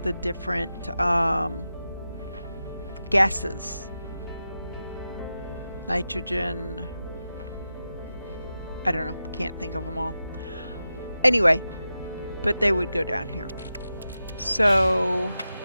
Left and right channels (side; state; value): both; inverted; correlation -0.91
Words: the different gases. Nitrogen, I don't know, can't think of them all. Anyway, but they would go down here. So